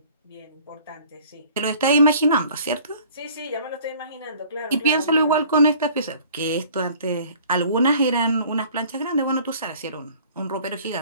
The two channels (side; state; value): both; inverted; correlation -0.51